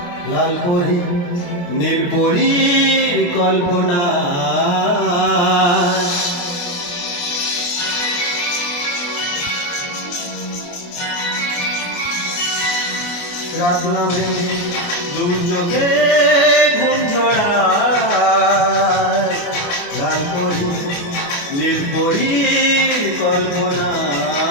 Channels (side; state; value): right; late; 28 ms